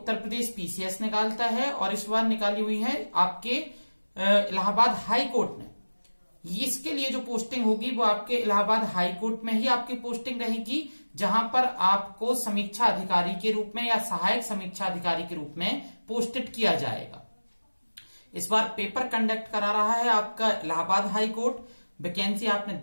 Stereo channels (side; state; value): both; inverted; correlation -1.00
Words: प्रदेश पीसीएस निकालता है और इस बार निकाली हुई है आपके इलाहाबाद हाई कोर्ट ने। इसके लिए जो पोस्टिंग होगी वो आपके इलाहाबाद हाई कोर्ट में ही आपकी पोस्टिंग रहेगी, जहां पर आपको समीक्षा अधिकारी के रूप में या सहायक समीक्षा अधिकारी के रूप में पोस्टेड किया जाएगा। इस बार पेपर कंडक्ट करा रहा है आपका इलाहाबाद हाई कोर्ट। वैकेंसी आपने